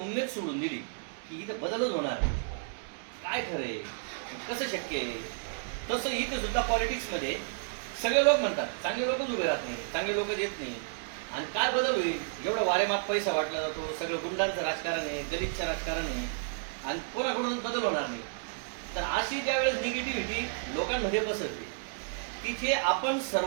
उमेद सोडून दिली की इथं बदलच होणार आहे. काय खरंय, कसं शक्य आहे, तसं इथे सुद्धा पॉलिटिक्समध्ये सगळे लोक म्हणतात चांगले लोकच उभे राहत नाही, चांगले लोक येत नाही. आणि काय बदल होईल, एवढं वारेमाप पैसा वाटला जातो, सगळं गुंडांचं राजकारण आहे, गरीबचं राजकारण आहे आणि कोणाकडून बदल होणार नाही. तर अशी ज्यावेळेस निगेटिव्हिटी लोकांमध्ये पसरते तिथे आपण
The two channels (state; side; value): silent; left; digital silence